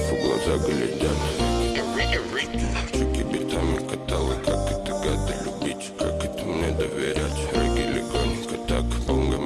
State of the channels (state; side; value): identical; both; correlation 1.00